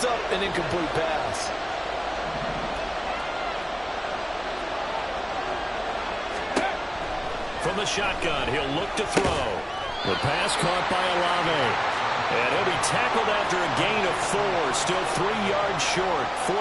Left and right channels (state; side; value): identical; both; correlation 1.00